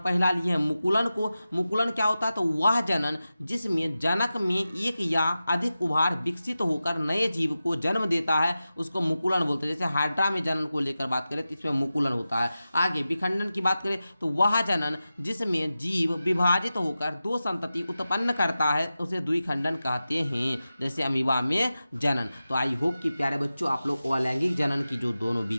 लिए हैं मुकुलन को। मुकुलन क्या होता है, तो वह जनन जिसमें जनक में एक या अधिक उभार विकसित होकर नए जीव को जन्म देता है उसको मुकुलन बोलते हैं। जैसे हाइड्रा में जनन को लेकर बात करें तो इसमें मुकुलन होता है। आगे विखंडन की बात करें तो वह जनन जिसमें जीव विभाजित होकर दो संतति उत्पन्न करता है उसे द्विखंडन कहते हैं, जैसे अमीबा में जनन। तो आई होप कि प्यारे बच्चों आप लोग अलैंगिक जनन की जो दोनों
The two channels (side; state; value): both; inverted; correlation -0.94